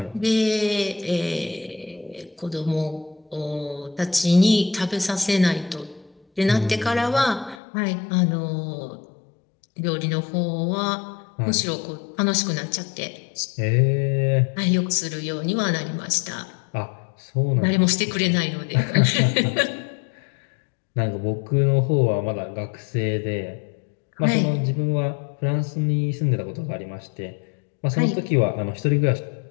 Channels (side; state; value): right; drops out; at 7.6 s